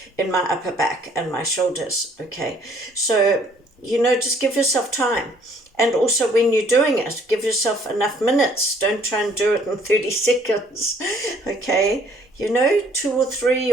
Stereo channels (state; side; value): normal; both; correlation 0.61